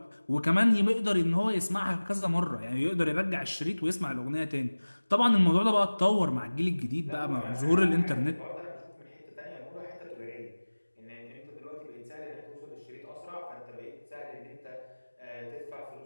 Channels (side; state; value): both; inverted; correlation -1.00